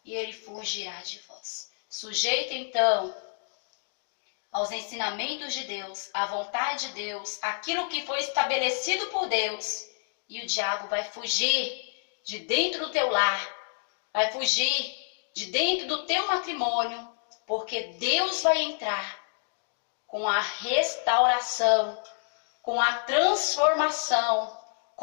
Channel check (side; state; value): right; silent; digital silence